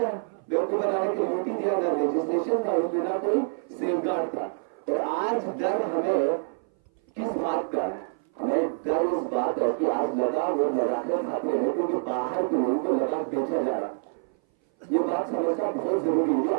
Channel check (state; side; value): silent; left; 58 dB below the other